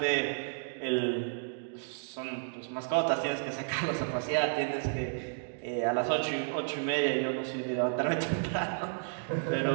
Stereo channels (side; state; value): left; silent; digital silence